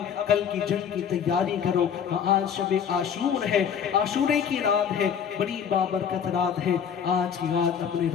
کل کی جنگ کی تیاری کرو. آج شب عاشور ہے, عاشورے کی رات ہے, بڑی بابرکت رات ہے. آج کی رات اپنے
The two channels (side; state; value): right; quieter; 7.8 dB